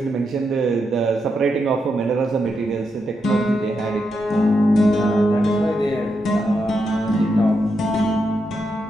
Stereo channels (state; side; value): normal; both; correlation 0.83